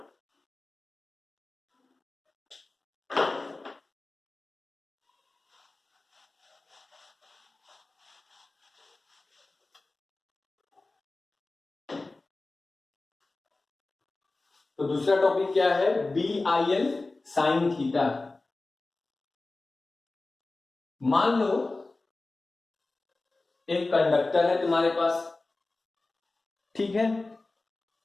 तो दूसरा टॉपिक क्या है, B I L sine theta. मान लो एक कंडक्टर है तुम्हारे पास, ठीक है,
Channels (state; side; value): quieter; right; 3.3 dB